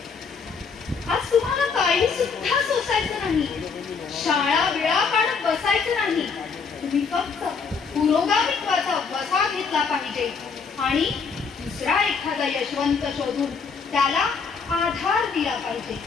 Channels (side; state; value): right; quieter; 5.4 dB